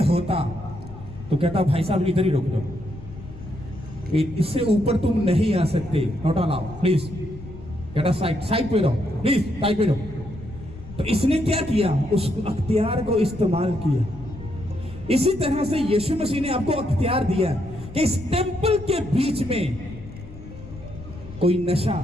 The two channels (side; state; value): left; noise; rumble, 15 dB below the sound